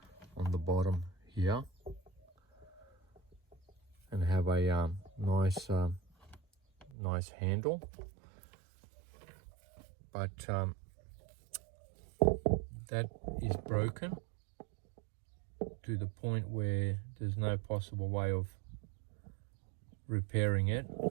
on the bottom here and have a nice handle, but that is broken to the point where there's no possible way of repairing it,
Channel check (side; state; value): left; drops out; at 6.9 s